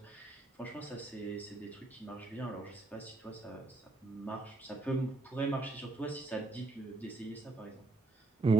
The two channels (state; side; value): quieter; left; 3.1 dB